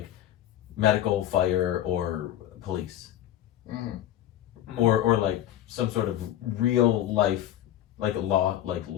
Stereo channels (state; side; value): quieter; right; 12.1 dB